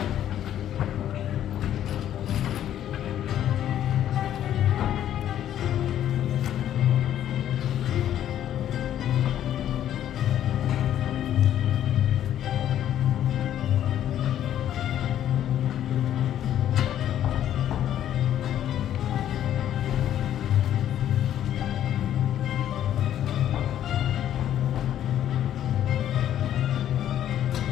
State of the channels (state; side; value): quieter; right; 11.1 dB